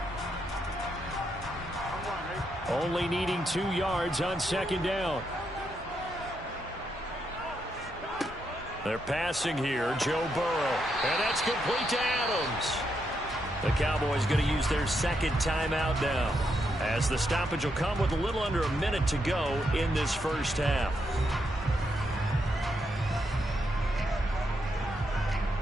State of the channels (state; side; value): normal; both; correlation 0.80